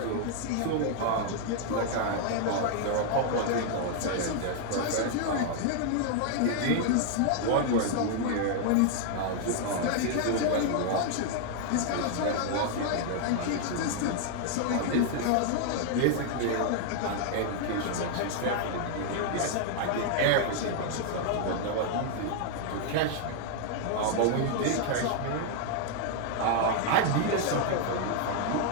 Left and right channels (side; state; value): both; different; correlation 0.00